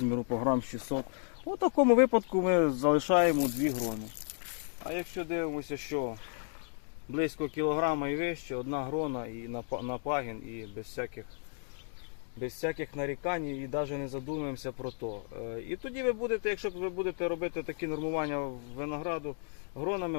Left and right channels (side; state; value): right; silent; 56 dB below the other